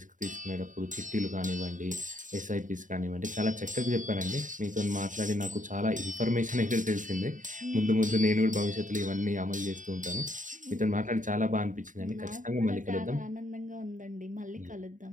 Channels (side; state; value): left; late; 0.37 ms